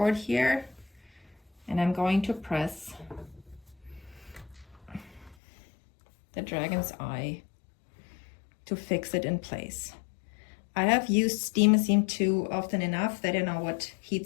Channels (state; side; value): drops out; right; at 5.4 s